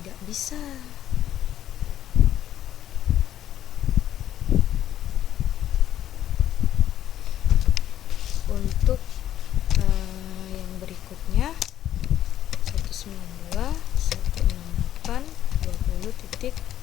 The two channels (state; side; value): quieter; right; 11.5 dB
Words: bisa. Untuk yang berikutnya